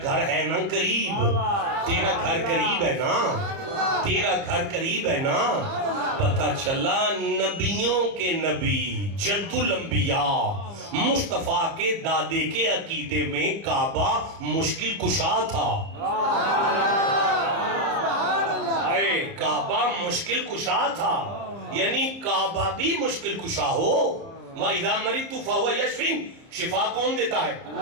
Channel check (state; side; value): late; left; 30 ms